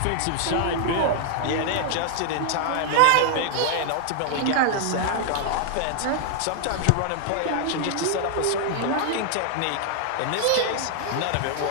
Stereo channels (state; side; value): different; both; correlation 0.00